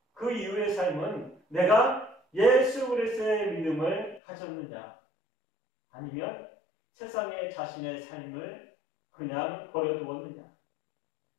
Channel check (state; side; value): drops out; right; at 4.2 s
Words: 그 이후의 삶은 내가 예수 그리스도의 믿음을 가졌느냐 아니면 세상에 자신의 삶을 그냥 버려두었느냐,